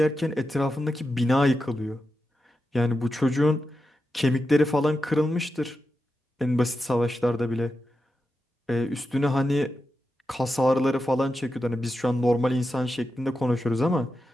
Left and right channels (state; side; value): normal; both; correlation 0.89